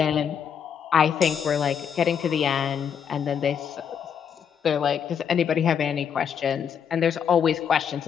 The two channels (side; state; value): right; quieter; 7.7 dB